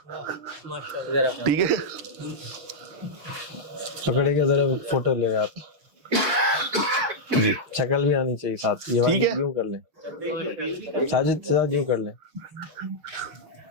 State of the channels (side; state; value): left; late; 6.5 ms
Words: ٹھیک ہے, پکڑے گا ذرا فوٹو لے آپ, جی شکل بھی آنی چاہیے ساتھ. یہ ٹھیک ہے, یوں کر لیں ساجد صاحب, یوں کر لیں.